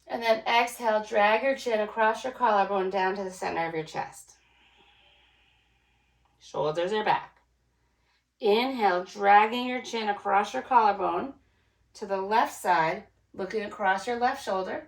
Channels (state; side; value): identical; both; correlation 1.00